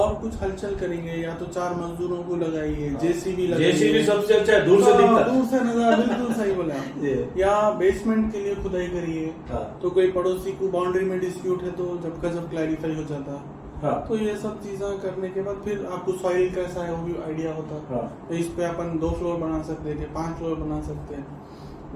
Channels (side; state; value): both; identical; correlation 1.00